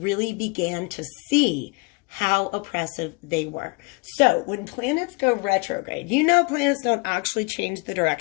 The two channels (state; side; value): quieter; right; 29.0 dB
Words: began to see how oppressive they were. So when planets go retrograde, you know planets don't actually change the